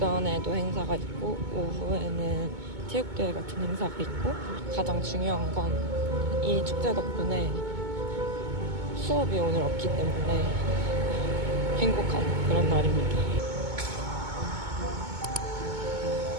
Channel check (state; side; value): late; left; 2.2 ms